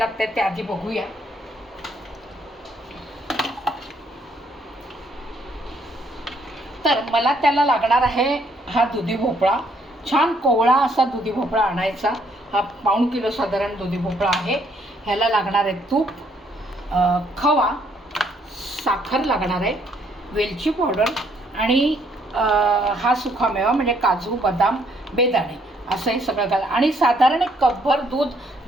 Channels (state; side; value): normal; both; correlation 0.69